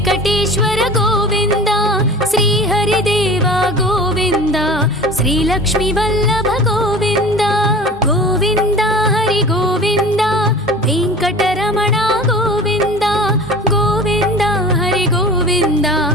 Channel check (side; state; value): both; normal; correlation 0.38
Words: गोविंद श्रीहरिदेव गोविंद श्रीलक्ष्मी वल्लभ गोविंद गोविंद हरि गोविंद वेंकटरमण गोविंद गोविंद हरि गोविंद